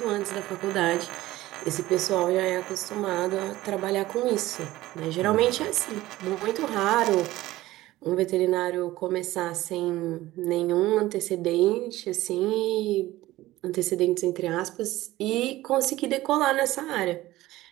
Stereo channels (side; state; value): left; quieter; 16.7 dB